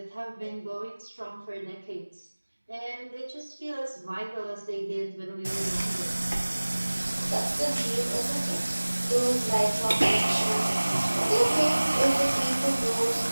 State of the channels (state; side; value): inverted; both; correlation -1.00